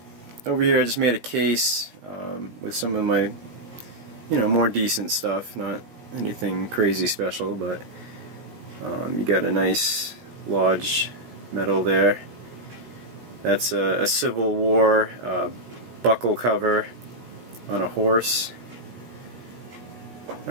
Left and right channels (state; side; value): late; left; 17 ms